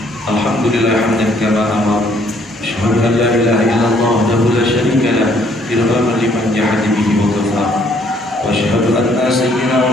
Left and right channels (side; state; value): both; normal; correlation 0.65